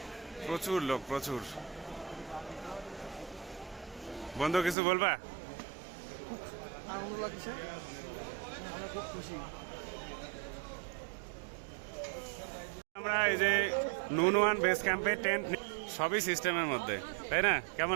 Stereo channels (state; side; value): drops out; left; at 4.8 s